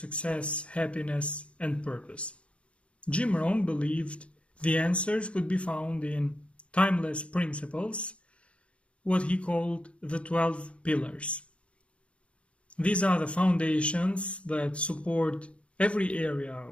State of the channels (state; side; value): late; right; 0.060 ms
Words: happiness and purpose? Jim Rohn believed the answers could be found in timeless principles, what he called the 12 pillars. These are the foundations that support every area